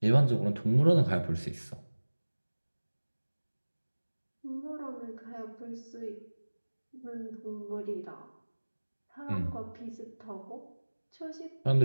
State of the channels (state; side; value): inverted; both; correlation -1.00